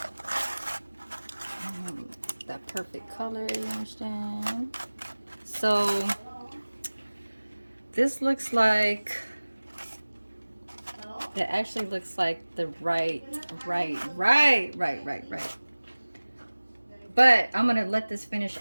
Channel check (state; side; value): inverted; both; correlation -1.00